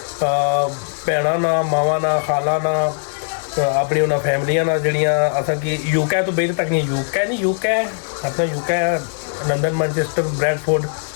भैन ना, मावा ना, खाला ना, अपनी उन्होंने फैमिलियां ना जड़ियाँ असा कि यूके तो बेहद तक नहीं, यूके अपना UK London, Manchester, Bradford,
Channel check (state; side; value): silent; right; 66 dB below the other